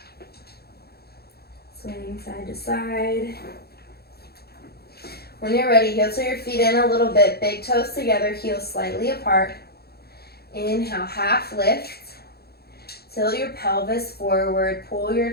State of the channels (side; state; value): right; late; 0.46 ms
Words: Swinging side to side. When you're ready, heel to your feet in a little bit, big toes together, heels slightly apart. Inhale, half lift. Tilt your pelvis forward, pull your